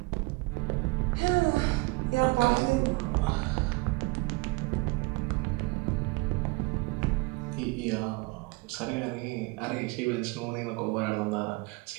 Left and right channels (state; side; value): quieter; left; 25.5 dB